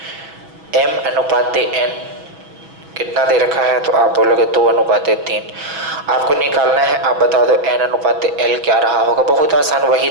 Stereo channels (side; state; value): left; late; 6.2 ms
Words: M अनुपात N कितना दे रखा है, तो आप बोलोगे 2 अनुपात 3। आपको निकालना है, आप बता दो N अनुपात L क्या रहा होगा। बहुत आसान, वही